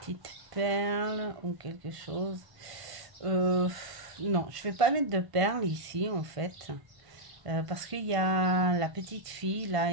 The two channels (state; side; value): late; left; 1.5 ms